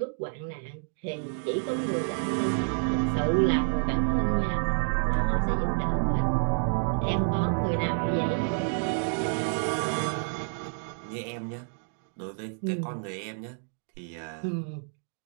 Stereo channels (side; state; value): left; silent; 59 dB below the other